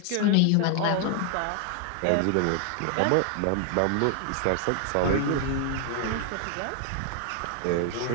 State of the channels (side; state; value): both; different; correlation 0.00